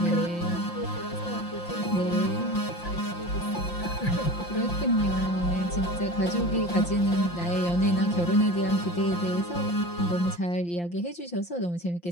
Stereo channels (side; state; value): right; late; 5.8 ms